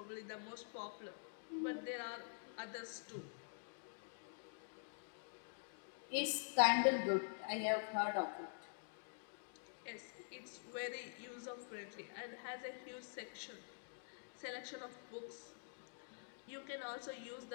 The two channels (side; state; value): right; silent; digital silence